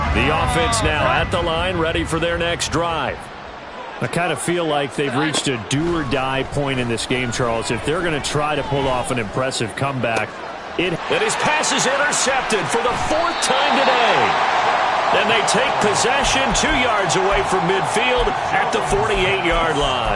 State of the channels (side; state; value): both; identical; correlation 1.00